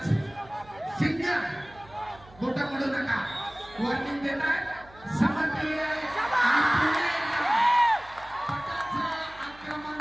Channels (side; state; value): right; noise; hum, 23 dB below the sound